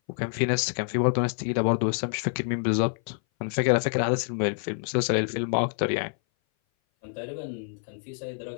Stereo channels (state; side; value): silent; right; 58 dB below the other